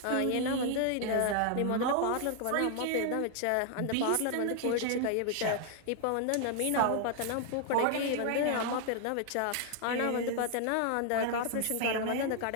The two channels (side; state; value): both; different; correlation 0.00